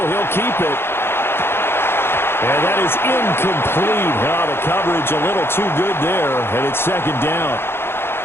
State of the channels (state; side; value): late; right; 0.11 ms